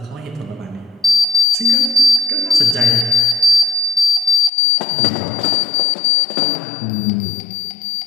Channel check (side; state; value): right; drops out; at 4.5 s